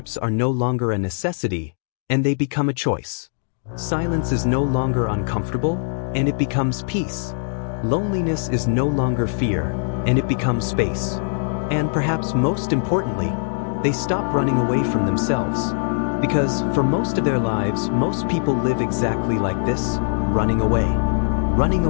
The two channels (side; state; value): right; silent; digital silence